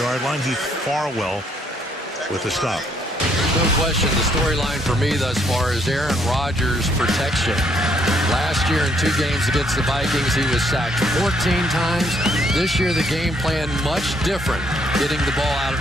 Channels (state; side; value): normal; both; correlation 0.69